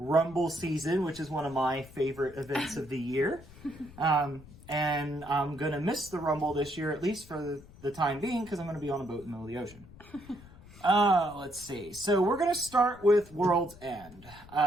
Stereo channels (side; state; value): left; noise; rumble, 20 dB below the sound